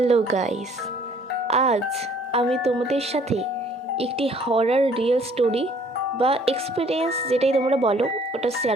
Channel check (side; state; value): both; normal; correlation 0.58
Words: guys, আজ আমি তোমাদের সাথে একটি হরার রিয়েল স্টোরি বা এক্সপিরিয়েন্স যেটাই তোমরা বলো ওটা